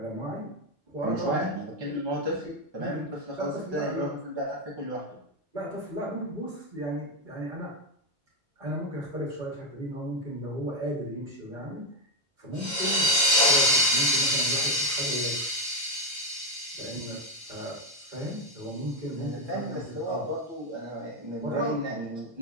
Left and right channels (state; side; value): normal; both; correlation 0.07